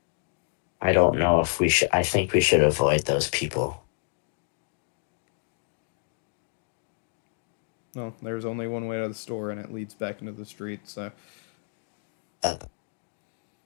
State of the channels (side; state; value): right; silent; digital silence